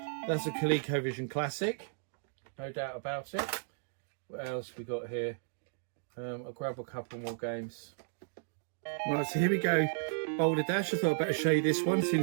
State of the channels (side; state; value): left; silent; digital silence